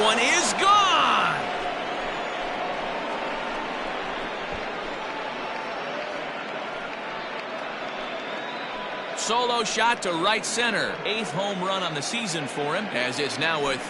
one is gone. Solo shot to right center. 8th home run on the season for him, as it's now a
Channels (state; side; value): identical; both; correlation 1.00